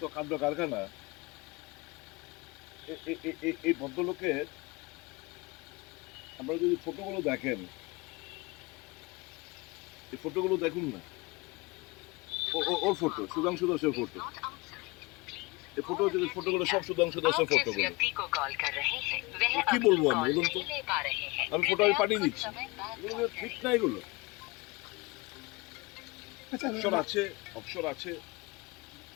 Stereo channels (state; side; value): quieter; right; 24.6 dB